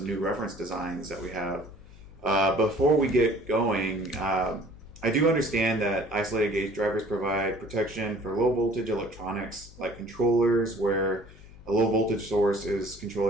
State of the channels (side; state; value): left; noise; hum, 21 dB below the sound